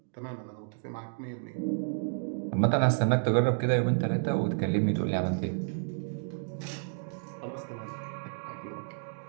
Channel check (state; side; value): silent; left; digital silence